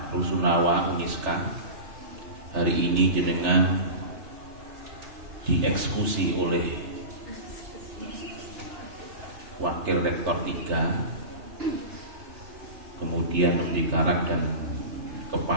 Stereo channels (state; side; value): late; left; 3.3 ms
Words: Rusunawa Uniska, hari ini jenengan dieksekusi oleh Wakil Rektor 3, kemudian Mendikarak dan